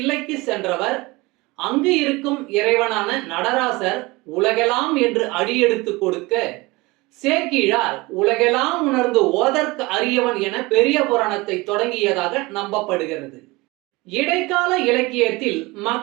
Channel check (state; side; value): quieter; left; 23.0 dB